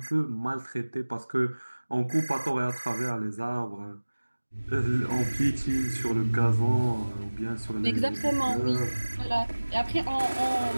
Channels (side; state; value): both; inverted; correlation -1.00